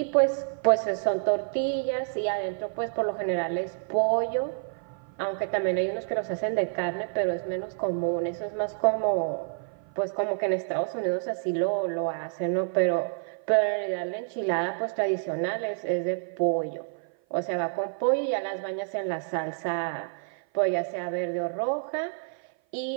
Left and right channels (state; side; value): silent; left; 56 dB below the other